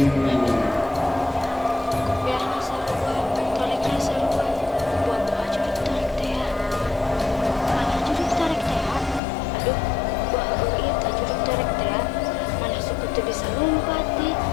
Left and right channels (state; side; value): drops out; right; at 9.2 s